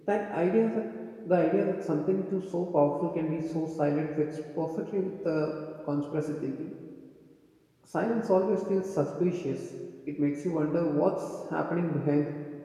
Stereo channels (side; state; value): both; identical; correlation 1.00